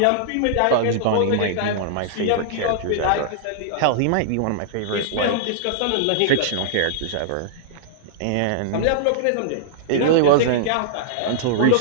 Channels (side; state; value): both; different; correlation -0.02